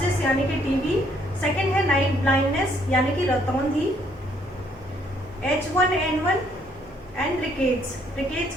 यानी कि टीबी, सेकंड है नाइट ब्लाइंडनेस यानी कि रतौंधी, H1N1 एंड रिकेट्स। रिकेट्स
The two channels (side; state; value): both; normal; correlation 0.67